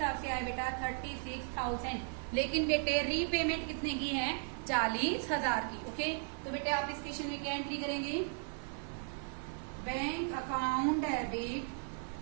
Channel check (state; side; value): silent; left; 54 dB below the other